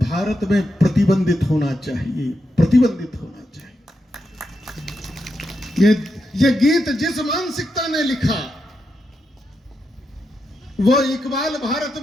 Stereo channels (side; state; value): both; normal; correlation 0.85